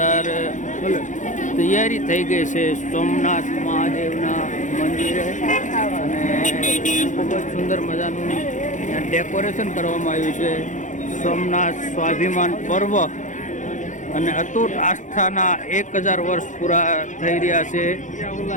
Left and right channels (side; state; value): right; late; 0.36 ms